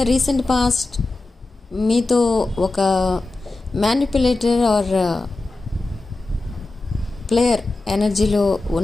recent past మీతో ఒక మ్యానిపులేటర్ ఆర్ ప్లేయర్ ఎనర్జీలో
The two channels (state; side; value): quieter; right; 3.2 dB